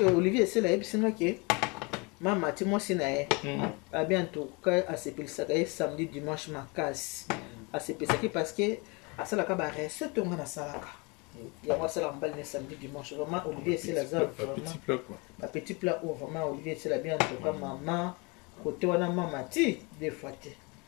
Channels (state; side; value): quieter; right; 28.9 dB